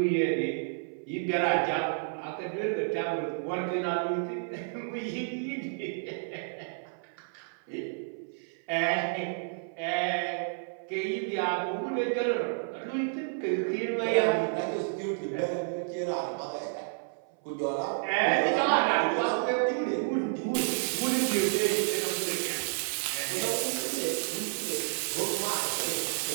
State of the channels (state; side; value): silent; left; 56 dB below the other